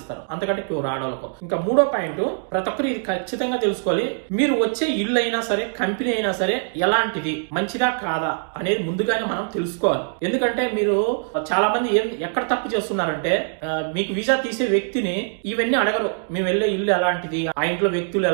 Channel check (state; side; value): silent; left; digital silence